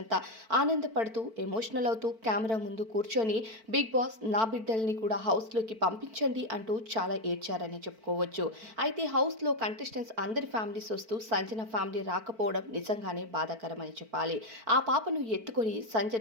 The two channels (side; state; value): left; late; 4.5 ms